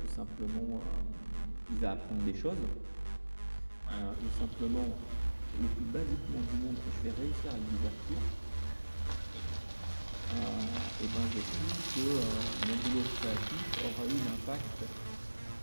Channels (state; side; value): inverted; both; correlation -1.00